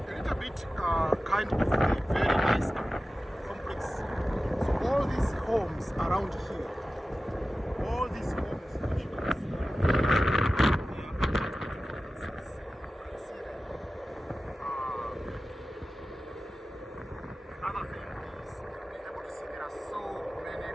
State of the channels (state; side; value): normal; both; correlation 0.95